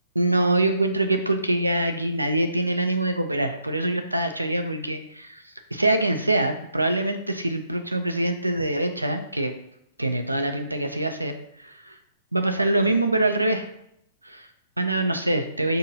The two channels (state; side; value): inverted; both; correlation -0.77